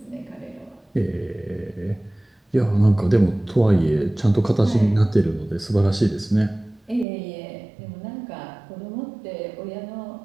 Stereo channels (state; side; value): drops out; left; at 7.1 s